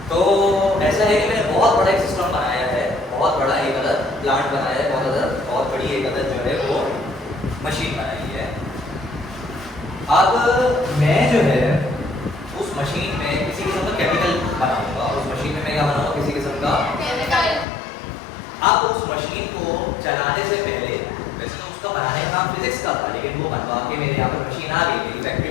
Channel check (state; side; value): drops out; right; at 17.7 s